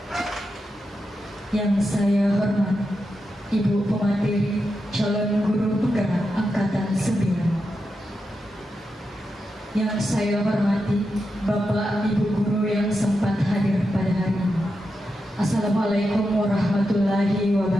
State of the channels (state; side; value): normal; both; correlation 0.88